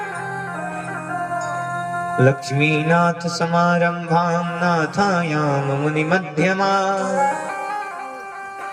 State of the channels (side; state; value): both; identical; correlation 1.00